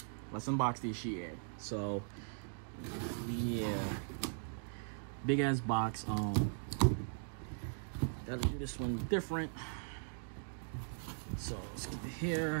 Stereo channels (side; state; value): left; silent; digital silence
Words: Let's unbox this shit. So yeah, big ass box. Gotta do this one different. So let's get it